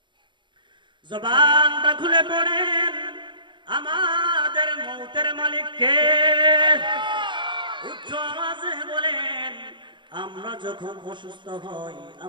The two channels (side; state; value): left; late; 0.23 ms